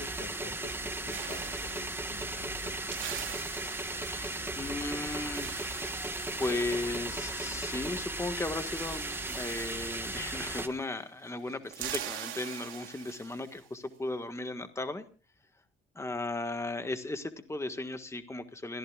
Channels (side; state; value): both; normal; correlation 0.43